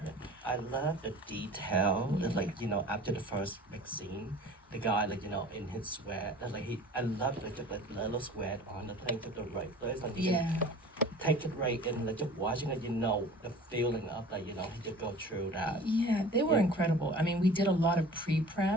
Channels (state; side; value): normal; both; correlation 0.43